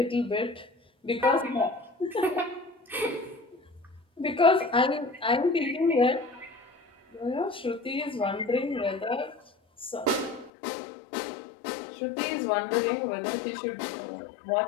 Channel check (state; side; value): drops out; right; at 10.5 s